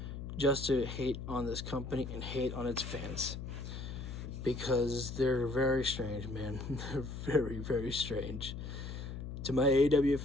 just to hate on this company and hate on its fans. Because they're very strange, man. They're very, very strange. To my AEW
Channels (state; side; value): noise; left; hum, 7 dB below the sound